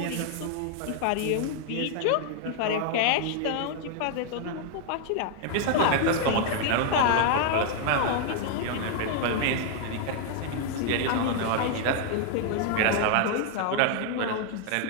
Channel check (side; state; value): both; different; correlation 0.00